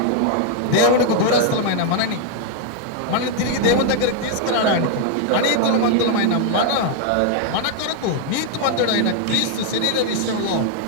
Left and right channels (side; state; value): both; different; correlation 0.00